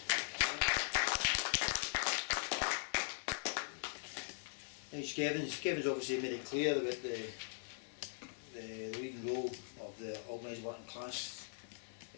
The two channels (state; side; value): silent; right; digital silence